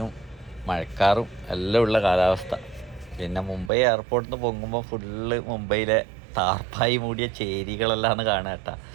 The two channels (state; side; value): drops out; left; at 3.7 s